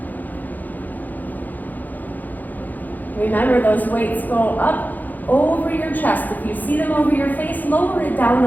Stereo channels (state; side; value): late; right; 0.084 ms